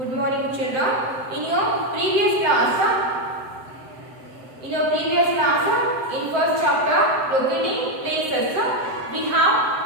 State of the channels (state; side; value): late; left; 7.8 ms